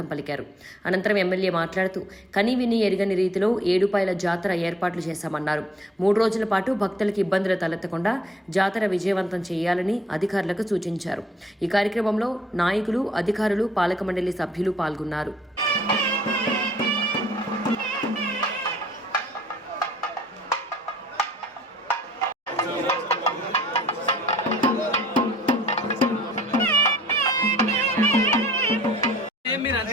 పలికారు. అనంతరం ఎమ్మెల్యే మాట్లాడుతూ కనీవిని ఎరుగని రీతిలో ఏడుపాయల జాతర ఏర్పాట్లు చేశామన్నారు. 3 రోజుల పాటు భక్తులకు ఇబ్బందులు తలెత్తకుండా జాతర విజయవంతం చేయాలని అధికారులకు సూచించారు. ఈ కార్యక్రమంలో నాయకులు, అధికారులు, పాలక మండలి సభ్యులు పాల్గొన్నారు.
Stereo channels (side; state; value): both; normal; correlation 0.61